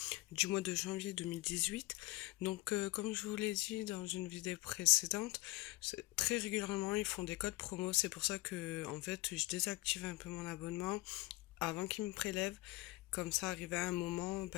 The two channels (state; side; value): quieter; right; 20.7 dB